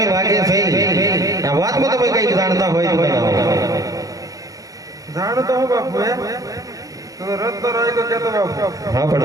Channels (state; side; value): late; left; 0.17 ms